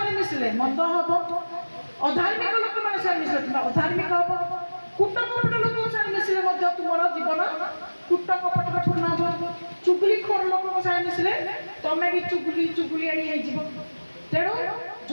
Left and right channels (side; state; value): both; inverted; correlation -1.00